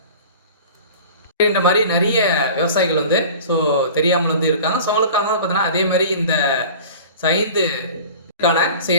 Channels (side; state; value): both; inverted; correlation -0.40